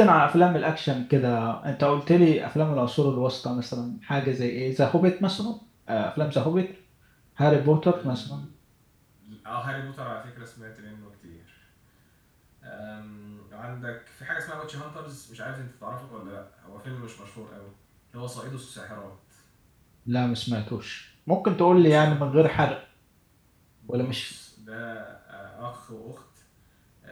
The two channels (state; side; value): identical; both; correlation 1.00